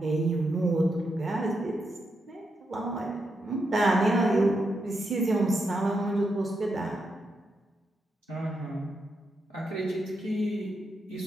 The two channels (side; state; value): both; normal; correlation 0.83